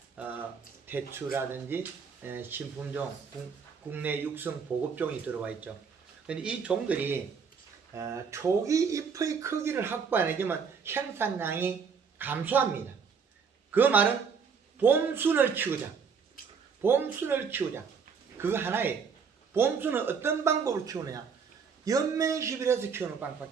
대추라든지 신품종, 국내 육성 보급종이 들어와 있죠. 근데 이 종들이 초기 잎의 크기를 확보 안 해주면 생산량이 감소합니다. 그 말은 봄순을 키우자. 봄순을 키우자. 그거 하나예요. 봄순은 어떤 방법으로 키우느냐? 연면시비해서 키우는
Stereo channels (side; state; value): left; quieter; 6.0 dB